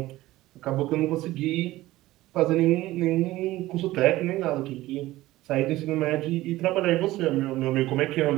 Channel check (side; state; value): left; quieter; 17.0 dB